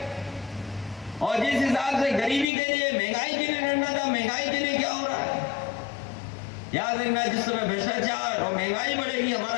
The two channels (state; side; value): drops out; right; at 2.5 s